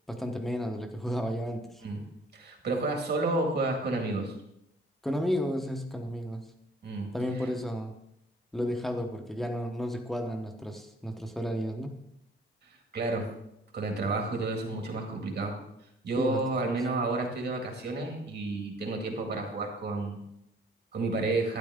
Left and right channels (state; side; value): normal; both; correlation 0.57